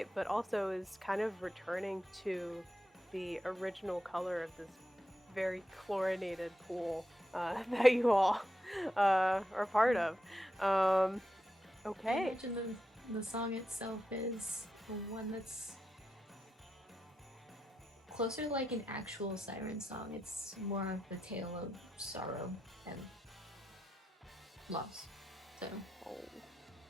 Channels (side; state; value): both; normal; correlation 0.87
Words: but also is kind of returning to the original color of this very chlorinated pool that you all are part of. I Okay. imagine the song itself is the one that's closer to like an actual siren song. It's more of the tale of sorrow and loss. So Oh.